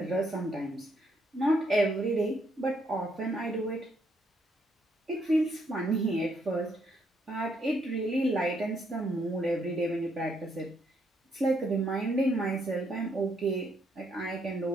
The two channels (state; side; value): normal; both; correlation 0.73